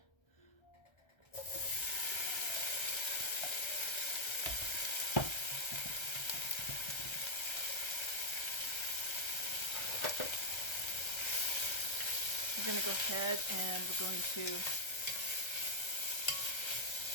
We're going to go ahead and we're going to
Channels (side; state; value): right; late; 1.3 ms